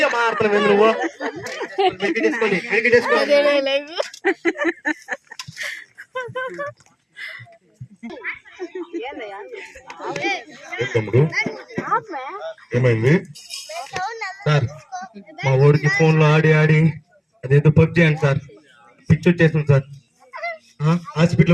మాట్లాడలేదు నువ్వు. తమ్ముడు ఏమైంది సార్? మా ఊరికి ఫోన్ లో ఆడి ఆడి అదేదో పబ్జీ అండి సార్, పిచ్చి వచ్చేసింది సార్.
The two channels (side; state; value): both; identical; correlation 1.00